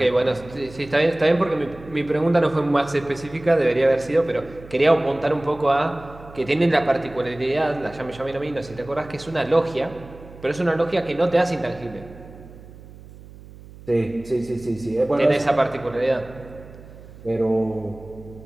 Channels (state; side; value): noise; right; hum, 19 dB below the sound